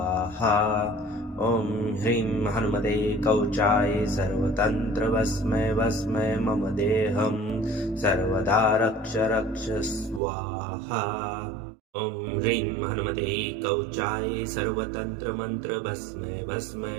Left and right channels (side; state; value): left; drops out; at 10.2 s